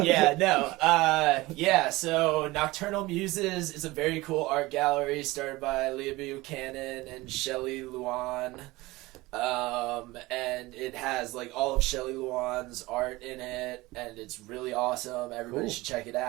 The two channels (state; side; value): quieter; left; 20.5 dB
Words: So Nocturnal Muses is a very cool art gallery started by Leah Buchanan and Shelley Luan. And it has like all of Shelley Luan's art in it, and it's really awesome. Everybody should check it